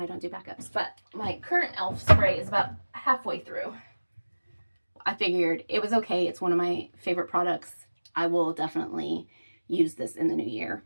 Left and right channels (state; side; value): inverted; both; correlation -1.00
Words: don't do backups, but my current e.l.f. spray is about halfway through. I figured it was okay. It's one of my favorite products. I will definitely use this in the new year.